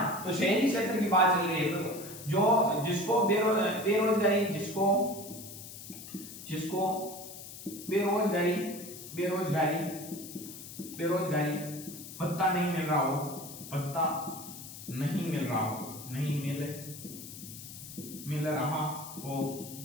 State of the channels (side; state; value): left; noise; hiss, 13 dB below the sound